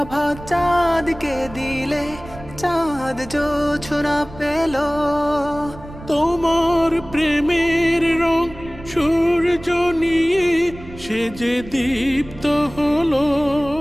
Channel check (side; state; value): right; noise; rumble, 16 dB below the sound